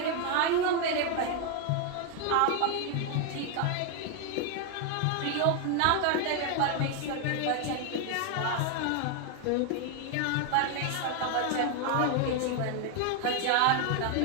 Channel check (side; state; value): both; different; correlation 0.01